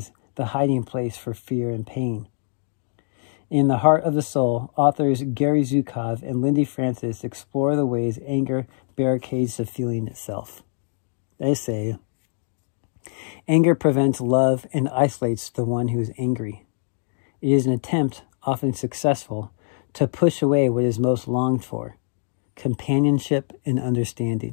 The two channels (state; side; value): silent; right; digital silence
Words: the hiding place for fear and pain. In The Heart of the Soul, authors Gary Zukov and Lindy Francis explore the ways anger barricades the feeling itself. They say, anger prevents love and isolates the one who is angry. It is an attempt, often successful, to push away what is most longed for, companionship and